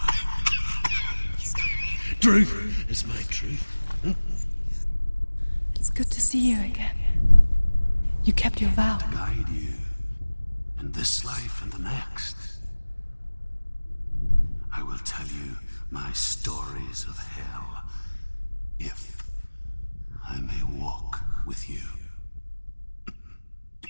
Truth is my truth. Huh? It's good to see you again. You kept your vow. Guide you in this life and the next. I will tell you my stories of hell, if I may walk with you.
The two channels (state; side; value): inverted; both; correlation -1.00